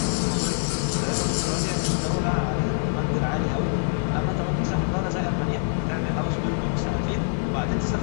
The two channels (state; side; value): silent; right; digital silence